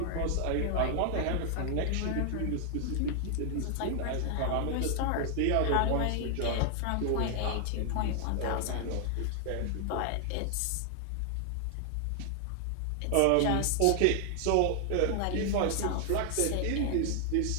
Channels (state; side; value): different; both; correlation 0.00